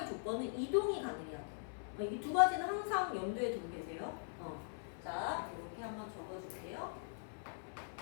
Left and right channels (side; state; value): right; silent; 50 dB below the other